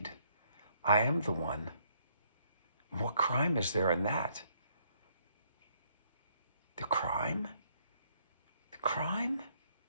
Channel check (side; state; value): both; inverted; correlation -0.68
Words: I am the one. What crime is there in that? The crime? The crime?